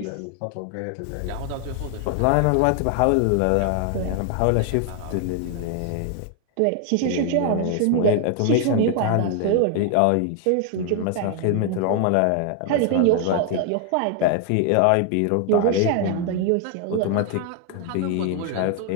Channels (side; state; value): both; different; correlation 0.00